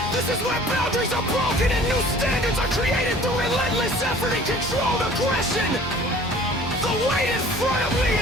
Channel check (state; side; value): normal; both; correlation 0.49